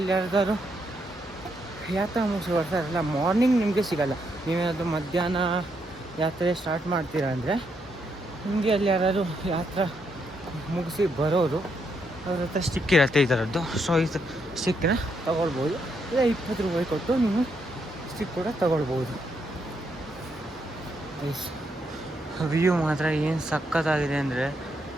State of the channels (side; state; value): both; normal; correlation 0.78